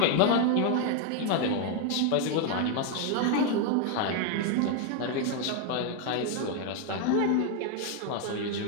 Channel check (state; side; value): different; both; correlation 0.01